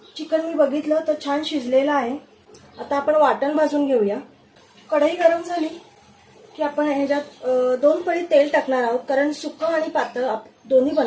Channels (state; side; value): identical; both; correlation 1.00